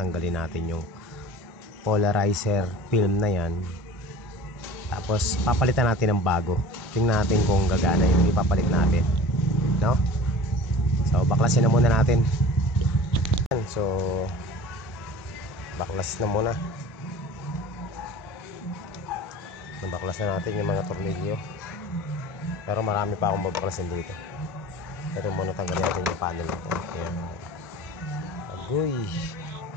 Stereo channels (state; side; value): normal; both; correlation 0.41